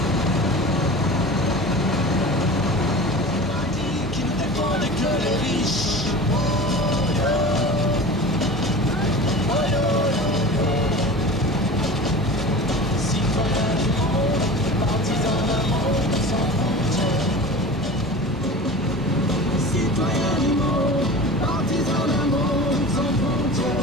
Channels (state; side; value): normal; both; correlation 0.35